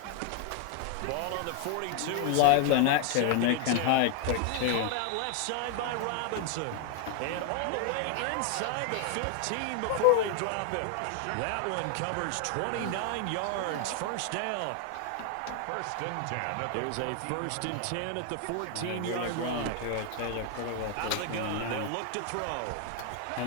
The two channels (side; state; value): both; different; correlation 0.00